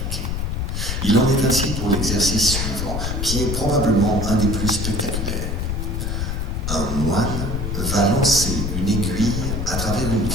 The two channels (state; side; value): noise; left; rumble, 1 dB below the sound